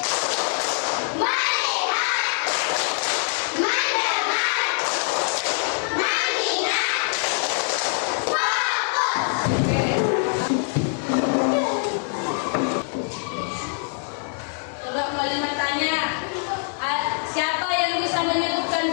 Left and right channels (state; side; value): silent; right; 56 dB below the other